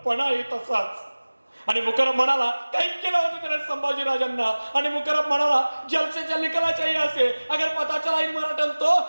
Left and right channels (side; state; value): both; inverted; correlation -1.00